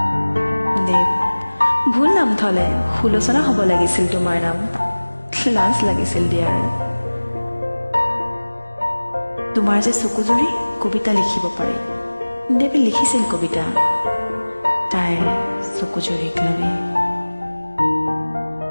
দেৱ, ভুল নাম থলে, সুলোচনা হ'ব লাগিছিল তোমাৰ নাম। লাজ লাগিছিল দিয়াৰ। তোমাৰ যে চকুজুৰি, কবিতা লিখিব পাৰি। দেৱে লিখিছিল কবিতা তাইৰ চকুজুৰিক লৈ।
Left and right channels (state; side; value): inverted; both; correlation -1.00